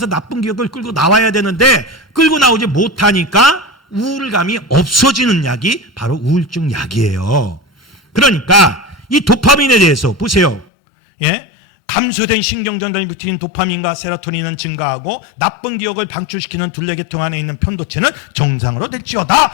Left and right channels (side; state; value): right; drops out; at 10.7 s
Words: 나쁜 기억을 끌고 나와야 되는데 끌고 나오지 못하니까 우울감이 없어지는 약이 바로 우울증 약이에요. 그러니까 이 도파민에 대해서 보세요. 예? 감소된 신경전달이 붙인 도파민과 세로토닌은 증가하고 나쁜 기억을 방출시키는 둘레계통 안에 있는 편도체는 정상으로